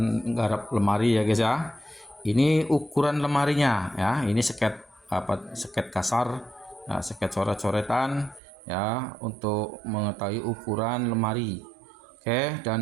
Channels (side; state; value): left; drops out; at 8.4 s